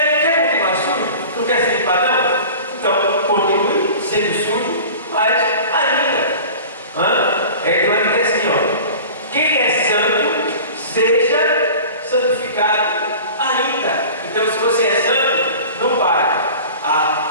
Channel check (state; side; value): inverted; both; correlation -0.39